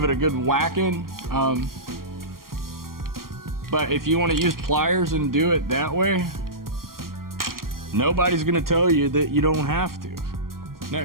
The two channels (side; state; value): left; late; 0.91 ms